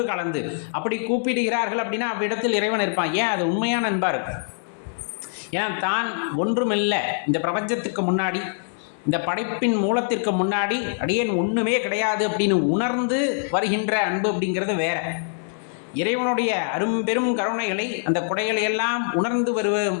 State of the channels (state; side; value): silent; right; digital silence